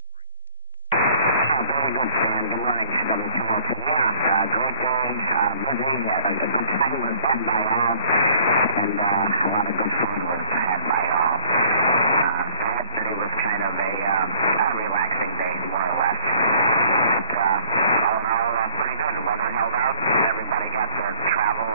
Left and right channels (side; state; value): both; inverted; correlation -0.54